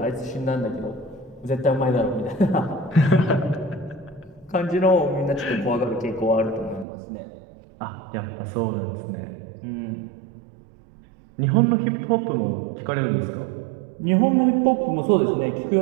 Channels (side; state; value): left; drops out; at 6.9 s